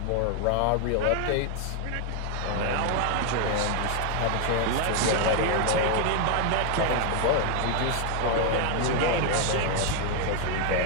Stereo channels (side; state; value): both; different; correlation 0.01